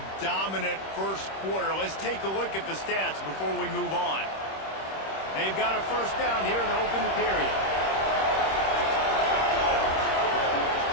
dominant first quarter. Let's take a look at the stats before we move on. They've got a first down here to open the period.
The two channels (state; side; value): late; right; 26 ms